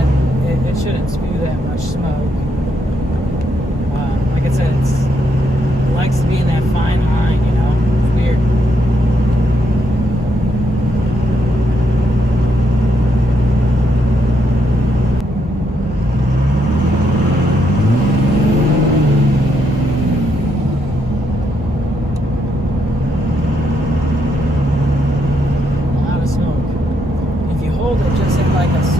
spew that much smoke. Like I said, it likes to be in that fine line, you know. It's weird. A lot of smoke. If you hold it just at like a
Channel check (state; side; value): normal; both; correlation 0.77